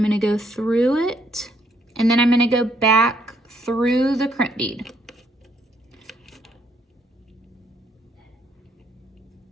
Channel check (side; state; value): both; normal; correlation 0.71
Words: gonna go through it, and then I'm gonna go back through the crimp bead.